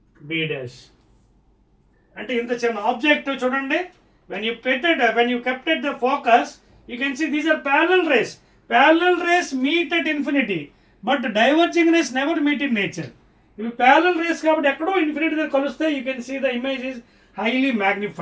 B dash. అంటే ఇంత చిన్న ఆబ్జెక్ట్ చూడండి, when you kept at the focus, you can see these are parallel rays. Parallel rays meet at infinity, but diverging rays never meet in nature. ఇవి parallel rays కాబట్టి ఎక్కడో ఇన్ఫినిటీ దగ్గర కలుస్తే you can see the image is highly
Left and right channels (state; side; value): identical; both; correlation 1.00